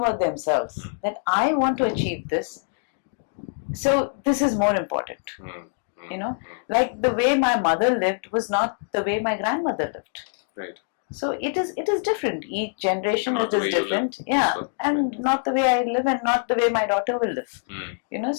themselves, that I want to achieve this, so this is more important. Like the way my mother lived was not the way my grandmother lived. Right. So it is different. Each generation it is different. Yeah, so, and not the way I live and not the way my daughter will live.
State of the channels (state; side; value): silent; right; digital silence